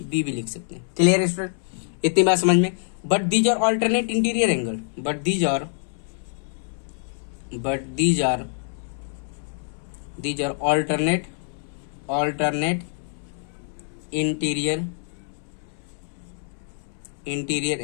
बी भी लिख सकते हैं। क्लियर है स्टूडेंट? इतनी बात समझ में। But these are alternate interior angle, but these are alternate interior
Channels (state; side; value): silent; right; 62 dB below the other